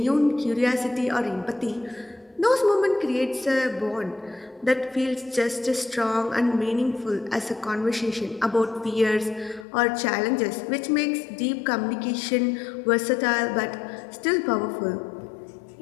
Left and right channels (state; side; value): drops out; right; at 9.7 s